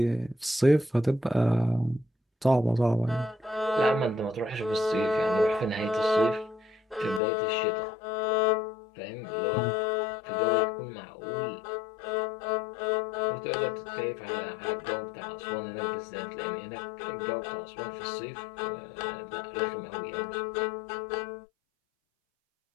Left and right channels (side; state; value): right; drops out; at 7.2 s